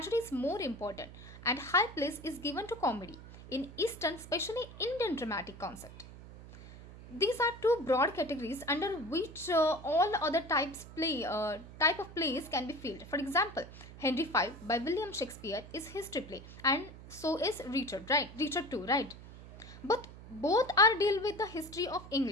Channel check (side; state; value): right; noise; hum, 16 dB below the sound